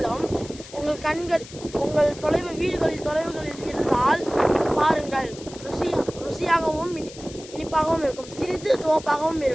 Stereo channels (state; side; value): noise; left; hiss, 17 dB below the sound